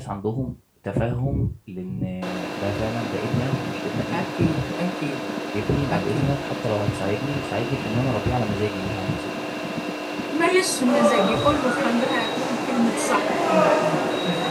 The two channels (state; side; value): identical; both; correlation 1.00